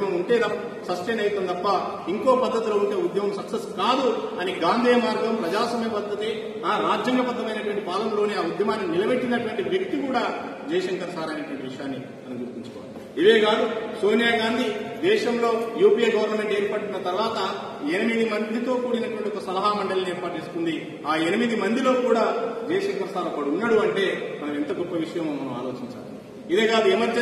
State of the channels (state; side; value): identical; both; correlation 1.00